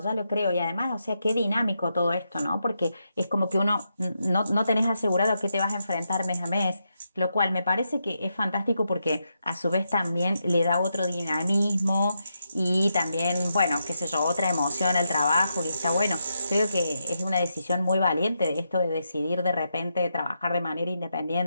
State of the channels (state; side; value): inverted; both; correlation -0.84